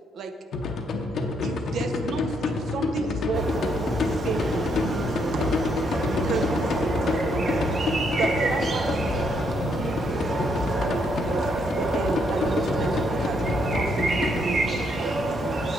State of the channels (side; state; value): both; normal; correlation 0.74